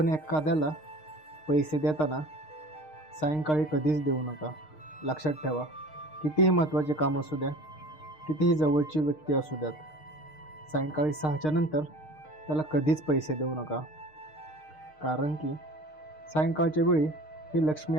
एखाद्याला पैसे देताना सायंकाळी कधीच देऊ नका. लक्षात ठेवा, कितीही महत्त्वाचे काम असू द्या, कितीही जवळची व्यक्ती असू द्यात, सायंकाळी 6च्या नंतर त्याला कधीच पैसे देऊ नका. कारण की सायंकाळच्या वेळी ही लक्ष्मी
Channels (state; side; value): late; right; 6.5 ms